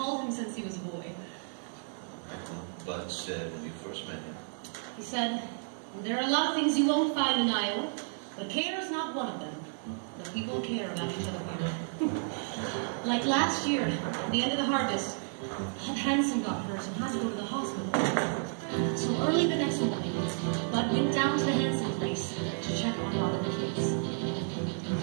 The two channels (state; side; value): silent; left; 57 dB below the other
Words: him since he was a boy. Right, well, Bud said when you first met him. He said, there are a lot of things you won't find in Iowa, but care is not one of them. The people care about each other here. Like last year, at the end of the harvest, Hanson got hurt and had to go to the hospital. So early the next morning, Bud went down to the Hanson place to check on Bob and the kids.